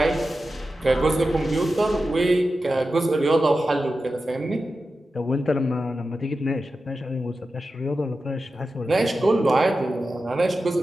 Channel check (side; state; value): both; normal; correlation 0.92